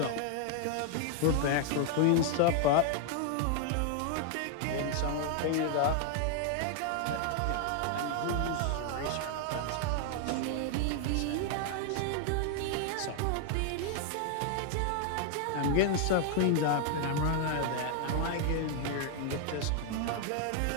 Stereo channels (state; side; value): different; both; correlation 0.00